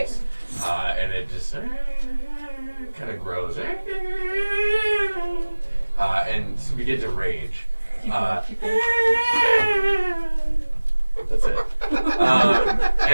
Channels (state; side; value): inverted; both; correlation -1.00